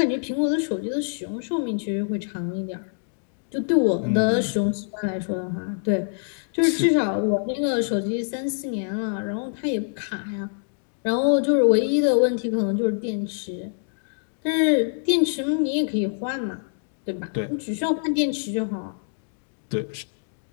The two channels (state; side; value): silent; right; digital silence